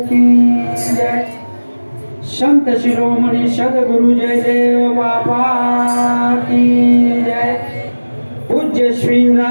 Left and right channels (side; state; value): both; inverted; correlation -1.00